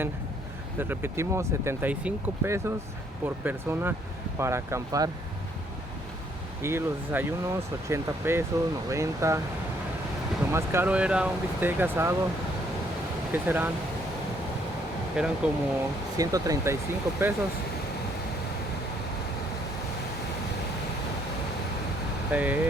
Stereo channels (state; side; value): normal; both; correlation 0.67